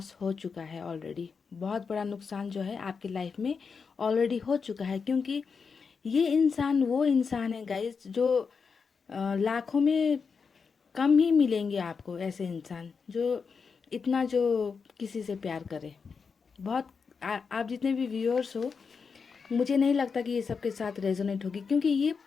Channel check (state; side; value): quieter; right; 5.5 dB